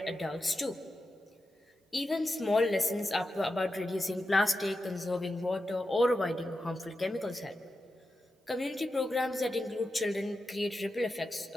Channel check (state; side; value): normal; both; correlation 0.90